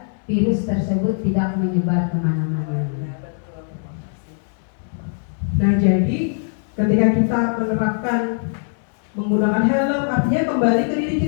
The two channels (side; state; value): right; silent; 62 dB below the other